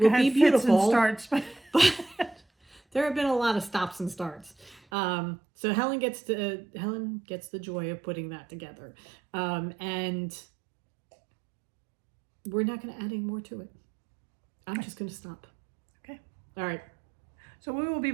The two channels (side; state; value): left; drops out; at 4.8 s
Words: will had be fits beautiful. and starts, but But there have been a lot of stops and starts. So Helen gets the joy of putting that together. And we're not going to add any more to it. I'm just going to stop. okay. All right. So we will be